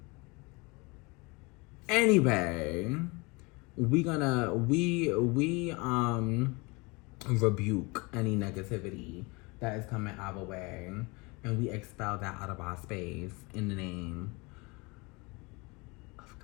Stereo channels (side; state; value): right; quieter; 27.0 dB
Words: Anyway, we rebuke any negativity that is coming our way, and we expel that out of our space in the name of